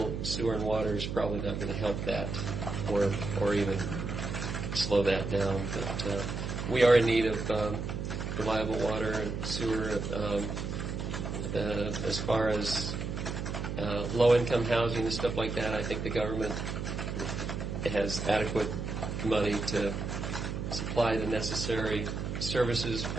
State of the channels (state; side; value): noise; right; hum, 4 dB below the sound